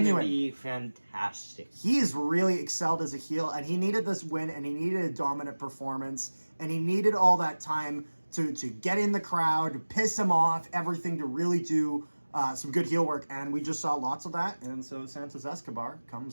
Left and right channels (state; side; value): inverted; both; correlation -1.00